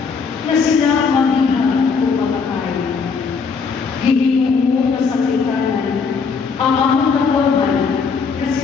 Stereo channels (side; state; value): right; quieter; 5.3 dB